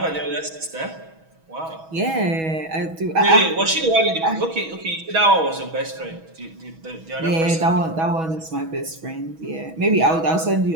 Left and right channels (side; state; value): left; late; 6.2 ms